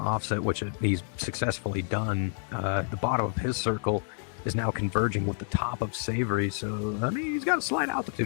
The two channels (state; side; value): silent; right; 59 dB below the other